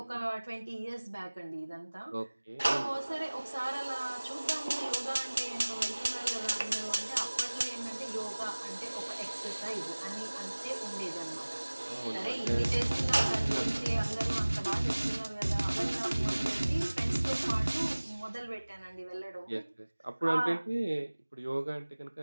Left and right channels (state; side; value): inverted; both; correlation -1.00